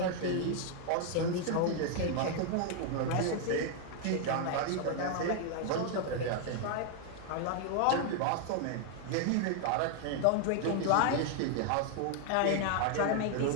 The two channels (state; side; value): different; both; correlation 0.00